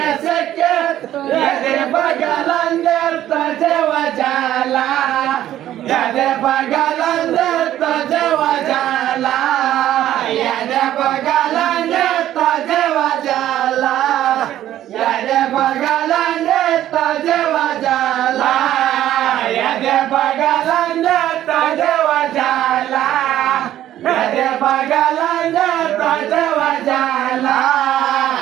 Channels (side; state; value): left; quieter; 12.5 dB